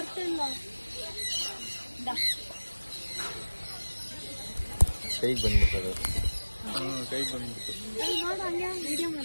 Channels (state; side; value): inverted; both; correlation -1.00